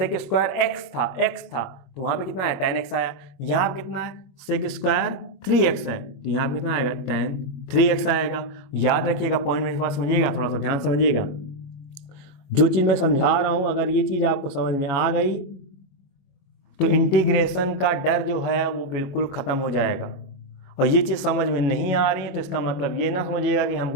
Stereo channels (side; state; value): right; late; 22 ms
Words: स्क्वायर x था तो वहाँ पे कितना है tan x आया। यहाँ पे कितना है सेक स्क्वायर 3x है, तो यहाँ पे कितना आएगा tan 3x आएगा। याद रखिएगा, पॉइंट मेरे पास समझिएगा, थोड़ा सा ध्यान समझिएगा। जो चीज़ मैं समझा रहा हूँ अगर ये चीज़ आपको समझ में आ गई तो इंटीग्रेशन का डर जो है वो बिल्कुल ख़त्म हो जाएगा। और ये चीज़ समझ में नहीं आ रही है तो इसका मतलब ये ना समझिएगा कि